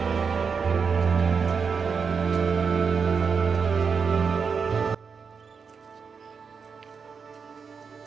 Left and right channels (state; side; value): quieter; left; 5.8 dB